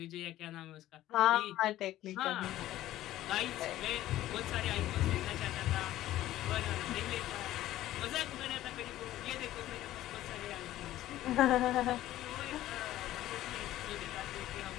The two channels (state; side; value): quieter; right; 14.3 dB